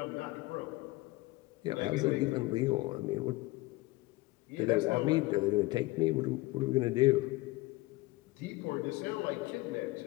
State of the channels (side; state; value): right; quieter; 20.5 dB